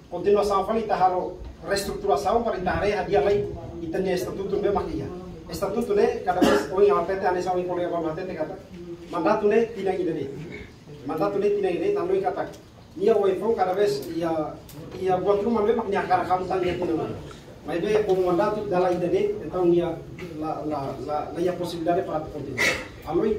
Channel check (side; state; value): both; identical; correlation 1.00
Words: continuação fala ita halo reestruturação para ita reha dia lai itanya estatuto be makia estatuto ne cada vez oi atete ane sawi kolega ba atete kata mandato ne tina ide nanoi kata ia oi fo cada vez ia buat rumah be maknya kara kamu tan dia tina mai be ko mandato dala ide ne então ia la ia possibilidade para continuar aloi